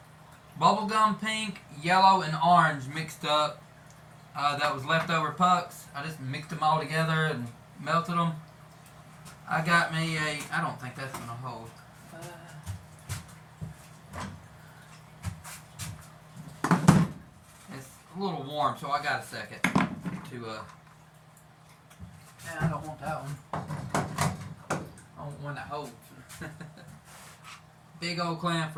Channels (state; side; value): identical; both; correlation 1.00